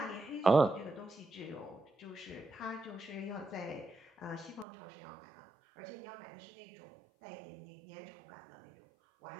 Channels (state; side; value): drops out; left; at 4.7 s